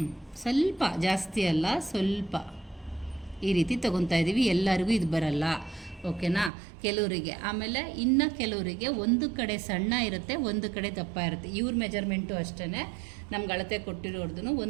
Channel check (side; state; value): left; drops out; at 6.5 s